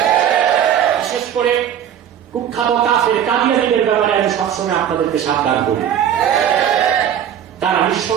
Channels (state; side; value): quieter; left; 9.7 dB